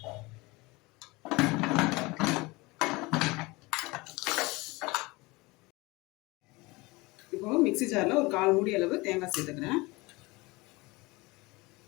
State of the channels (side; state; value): right; quieter; 23.4 dB